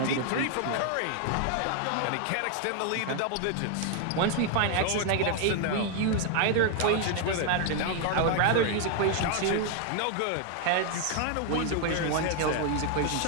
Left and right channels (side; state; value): both; different; correlation 0.01